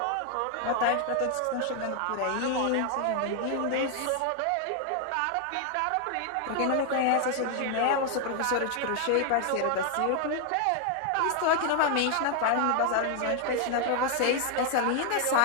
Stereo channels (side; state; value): both; different; correlation 0.00